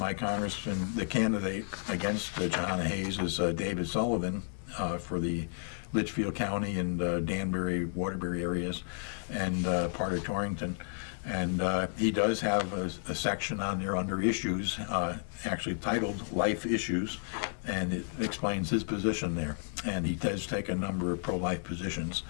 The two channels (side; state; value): right; silent; 56 dB below the other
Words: congressman, the candidate against Jahana Hayes is David Sullivan for the Litchfield County and Danbury, Waterbury areas, and part of Torrington. And he does have a section on there under issues, actually titled Life Issues, and it explains his position there. And he does take a number of pro-life positions